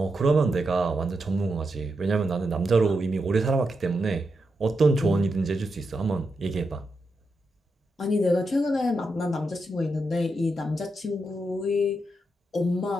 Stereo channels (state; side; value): normal; both; correlation 0.85